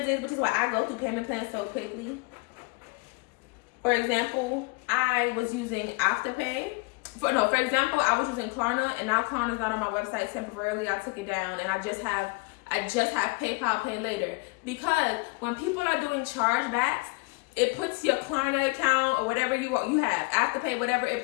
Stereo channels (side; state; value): right; quieter; 28.0 dB